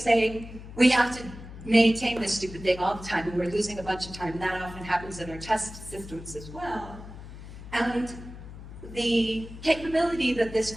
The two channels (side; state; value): left; noise; hum, 14 dB below the sound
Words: we have to maintain this stupid thing all the time, and we're losing a bunch of time, and that often happens in our test systems as well. And the capability that this